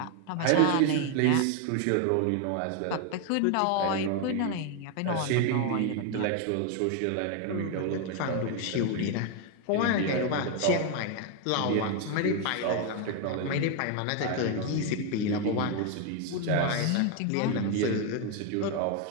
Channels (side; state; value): both; different; correlation 0.01